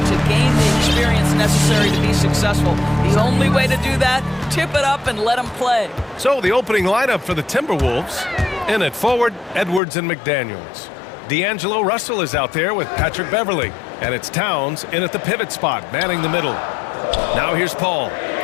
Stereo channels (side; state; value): right; drops out; at 9.8 s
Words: to gain the experience necessary to be successful. The only way to do that, tip it up and let them play. So the opening lineup for the Timberwolves. In at forward, Edwards and McDaniels. D'Angelo Russell is out there with Patrick Beverly. And it's Towns in at the pivot spot, manning the middle. Now here's Paul.